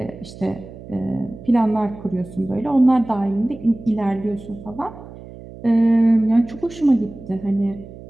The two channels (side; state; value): right; noise; hum, 16 dB below the sound